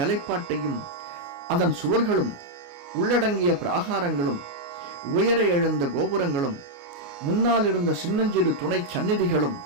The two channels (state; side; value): late; left; 29 ms